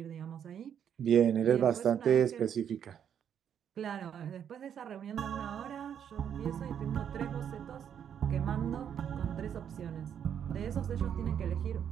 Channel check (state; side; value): quieter; left; 8.7 dB